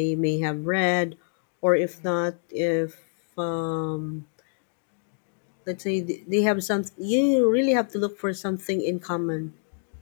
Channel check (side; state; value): right; silent; digital silence